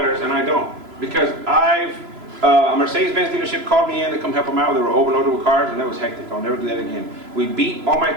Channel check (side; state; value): left; late; 3.0 ms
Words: and I don't. Because a Mercedes-Benz dealership called me in to come help them out. They were overloaded with cars, and that was hectic. I'll never do that again. We beat all my